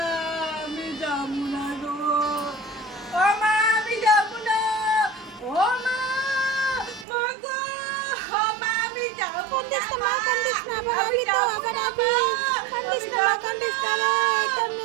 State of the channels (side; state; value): left; drops out; at 7.1 s